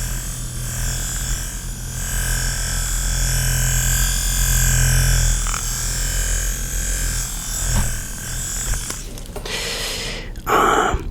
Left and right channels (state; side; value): identical; both; correlation 1.00